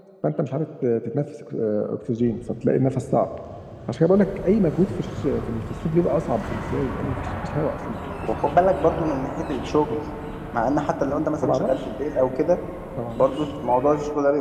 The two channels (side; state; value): both; identical; correlation 1.00